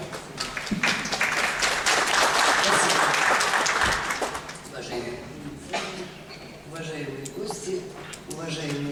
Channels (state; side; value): identical; both; correlation 1.00